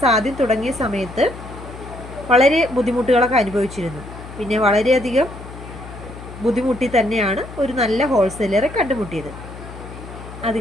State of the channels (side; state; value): left; noise; hum, 14 dB below the sound